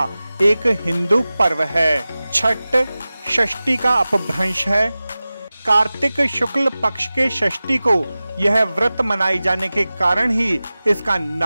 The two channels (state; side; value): inverted; both; correlation -0.97